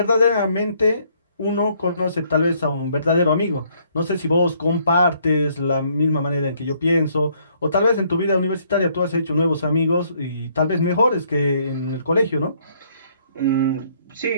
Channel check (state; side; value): inverted; both; correlation -0.66